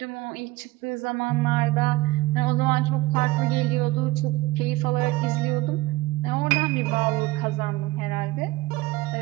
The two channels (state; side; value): quieter; left; 19.5 dB